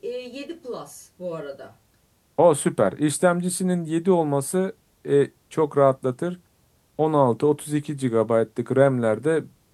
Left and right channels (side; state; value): both; identical; correlation 1.00